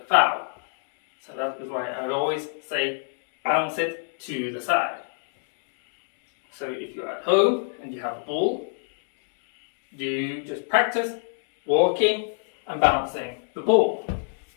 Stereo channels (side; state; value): right; silent; 60 dB below the other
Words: foul. So that is why I always say bounce it to the side. So if you're at home and you have a ball, you just practice walking and bouncing the ball.